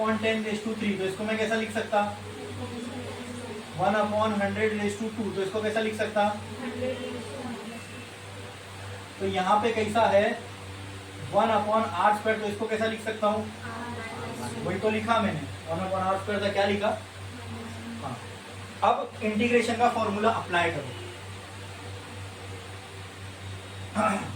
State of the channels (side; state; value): both; identical; correlation 1.00